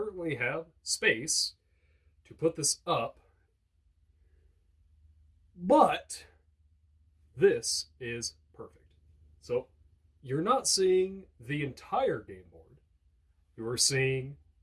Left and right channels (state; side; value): identical; both; correlation 1.00